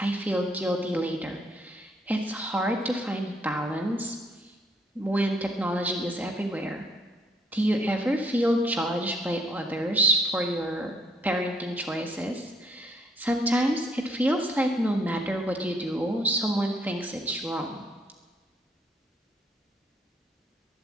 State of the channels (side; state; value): both; normal; correlation 0.68